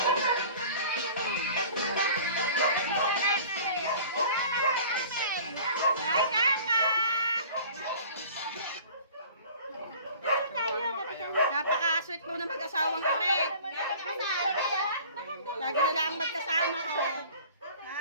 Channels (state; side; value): inverted; both; correlation -0.45